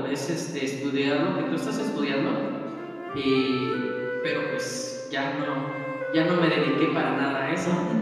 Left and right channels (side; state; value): both; identical; correlation 1.00